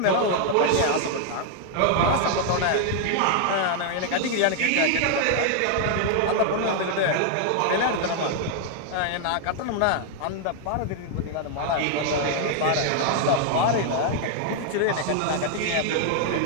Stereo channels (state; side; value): different; both; correlation 0.00